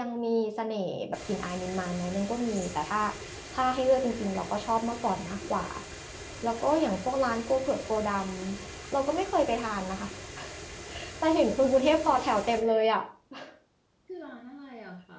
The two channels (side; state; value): both; identical; correlation 1.00